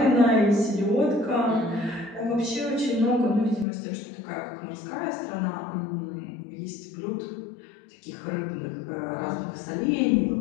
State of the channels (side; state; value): right; drops out; at 3.7 s